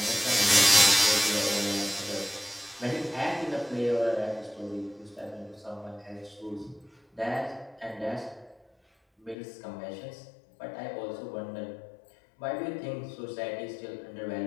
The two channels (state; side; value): drops out; right; at 9.3 s